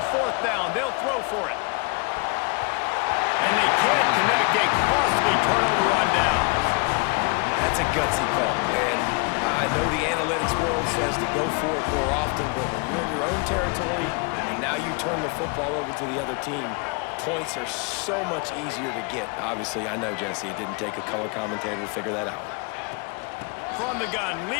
fourth down, they'll throw for it. And they can't connect a costly turnover on downs. That's a gutsy call, and I know the analytics world says to go for it more often, but when you're in your own territory and now you turn the football over to the other team, points are so much easier to get. Obviously, I know, Jesse, it didn't take a color commentator to figure that out. From the gun,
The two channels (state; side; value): quieter; right; 31.8 dB